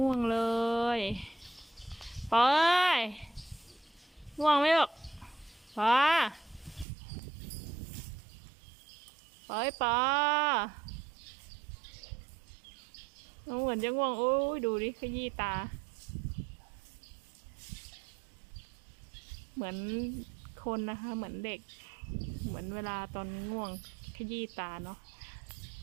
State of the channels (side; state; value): left; drops out; at 6.9 s